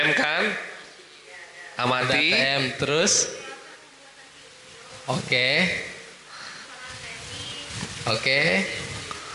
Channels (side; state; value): both; identical; correlation 1.00